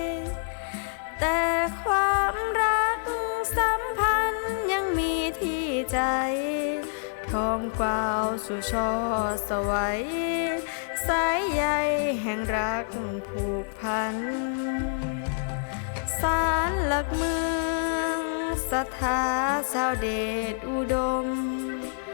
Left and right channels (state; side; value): silent; right; digital silence